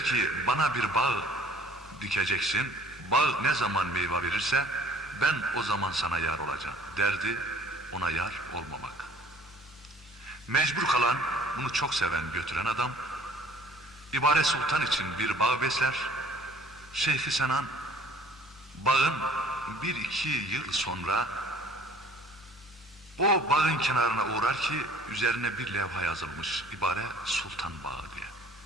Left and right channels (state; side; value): normal; both; correlation 0.53